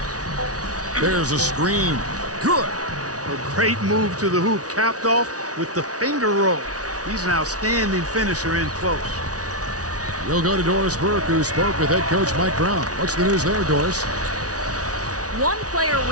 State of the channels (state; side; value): late; left; 0.68 ms